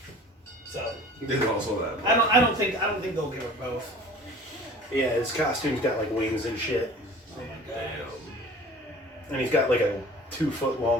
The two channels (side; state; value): both; normal; correlation 0.44